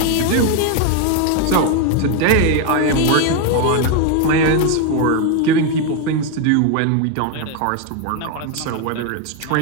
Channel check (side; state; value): both; different; correlation 0.01